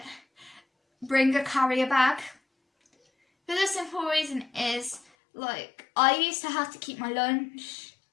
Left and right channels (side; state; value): right; drops out; at 5.1 s